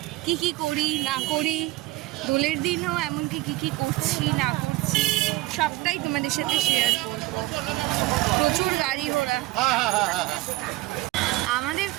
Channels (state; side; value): quieter; left; 19.1 dB